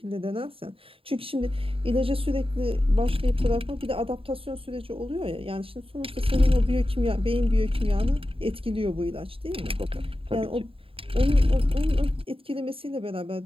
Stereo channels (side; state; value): left; late; 0.27 ms